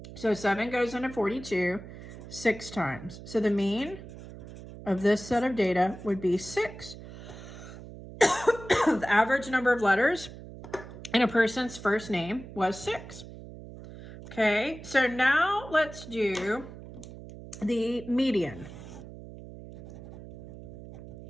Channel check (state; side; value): noise; right; hum, 14 dB below the sound